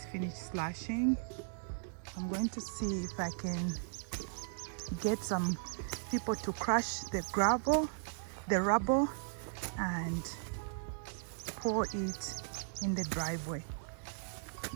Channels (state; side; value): silent; left; digital silence